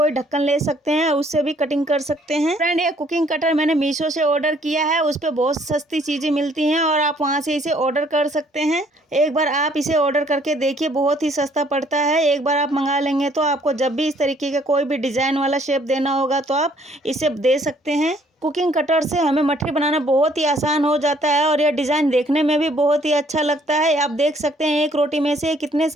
ढक्कन ले सकते हैं, उससे भी कटिंग कर सकते हैं। फ्रेंड, ये कुकिंग कटर मैंने मीशो से ऑर्डर किया है। उस पर बहुत सस्ती चीज़ें मिलती हैं और आप वहाँ से इसे ऑर्डर कर सकते हैं। एक बार आप इसे ऑर्डर करके देखिए, बहुत ही सस्ता पड़ता है। एक बार आप मंगा लेंगे तो आपको जब भी इस तरीके का कोई भी डिज़ाइन वाला शेप देना होगा तो आप इसे दे सकते हैं। कुकिंग कटर से हमें मठरी बनाना बहुत ही आसान हो जाता है और यह डिज़ाइन देखने में भी बहुत ही अच्छा लगता है। आप देख सकते हैं एक रोटी में से कितने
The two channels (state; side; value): normal; both; correlation 0.63